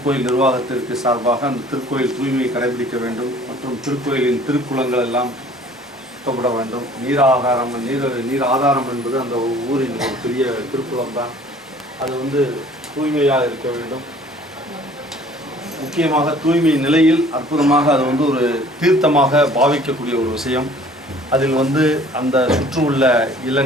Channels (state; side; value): normal; both; correlation 0.52